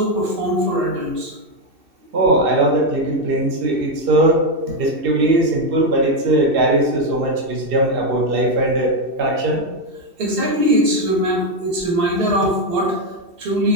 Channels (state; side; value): late; left; 2.7 ms